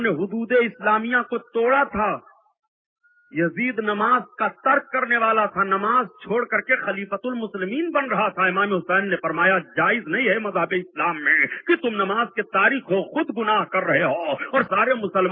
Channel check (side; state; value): both; identical; correlation 1.00